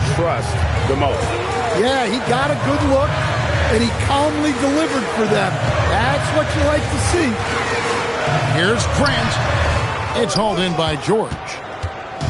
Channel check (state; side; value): identical; both; correlation 1.00